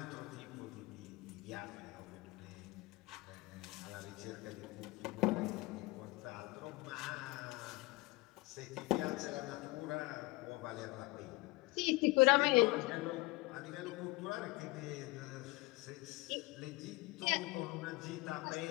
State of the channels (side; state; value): right; quieter; 22.6 dB